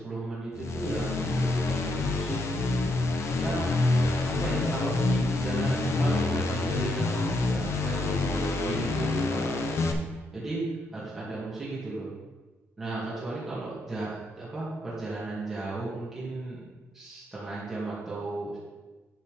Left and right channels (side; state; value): both; normal; correlation 0.78